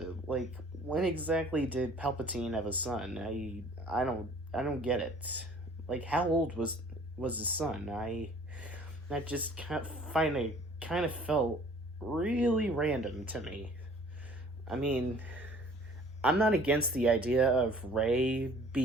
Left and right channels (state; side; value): normal; both; correlation 0.52